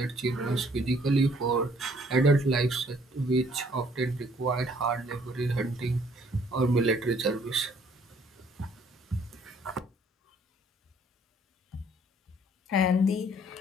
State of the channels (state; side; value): normal; both; correlation 0.61